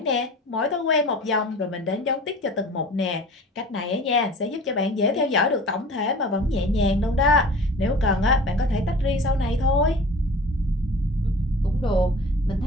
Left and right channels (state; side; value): normal; both; correlation 0.42